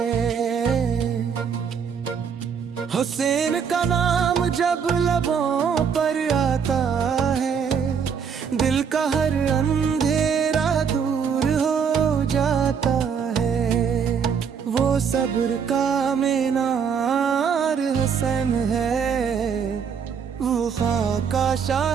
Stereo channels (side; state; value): left; quieter; 6.8 dB